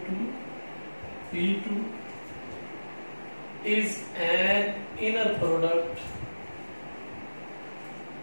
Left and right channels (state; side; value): inverted; both; correlation -1.00